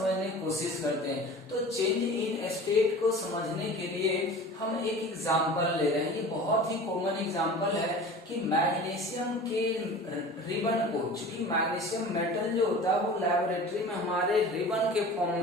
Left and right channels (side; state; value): both; normal; correlation 0.39